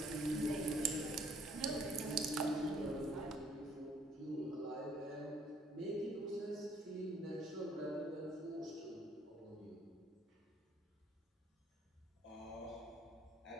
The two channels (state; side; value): normal; both; correlation 0.63